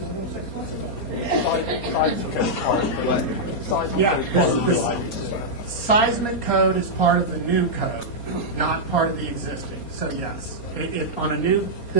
6 months ago. Yeah, the seismic code is part of the new code, not part of the existing. So yes, on a new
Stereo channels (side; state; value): right; late; 4.3 ms